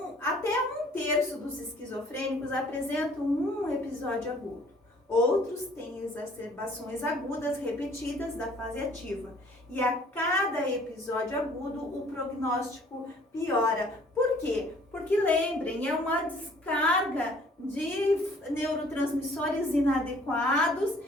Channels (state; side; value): normal; both; correlation 0.57